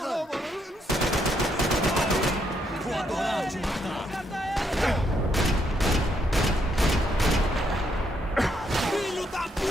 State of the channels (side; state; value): both; normal; correlation 0.75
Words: Vou adorar te matar! Filho da